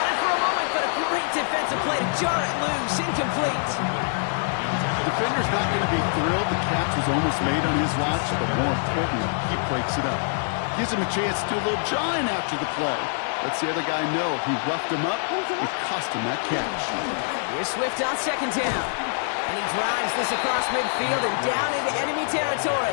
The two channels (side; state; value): right; silent; digital silence